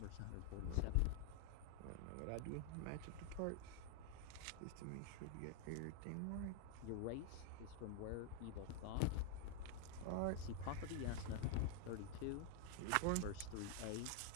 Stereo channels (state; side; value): different; both; correlation 0.00